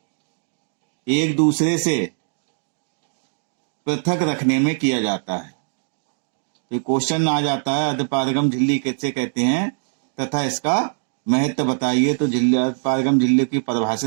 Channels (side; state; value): left; silent; digital silence